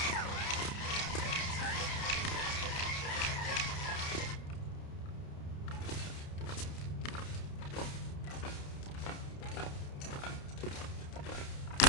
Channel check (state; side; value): late; right; 30 ms